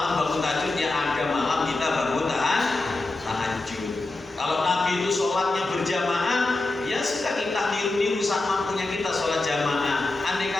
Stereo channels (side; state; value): right; quieter; 3.0 dB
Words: bangun tahajud, ya ada malam kita bangun tahajud. Kalau Nabi itu sholatnya berjamaah, ya sudah kita niru-niru sama mampunya kita sholat jamaah. Andai